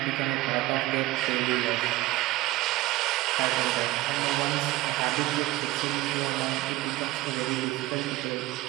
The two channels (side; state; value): left; quieter; 18.2 dB